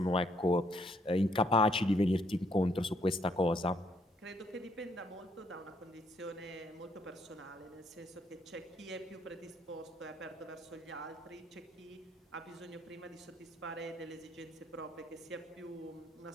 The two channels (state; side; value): normal; both; correlation 0.69